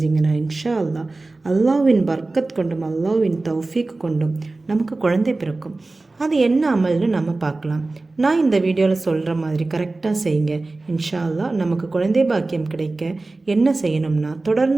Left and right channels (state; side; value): quieter; left; 3.2 dB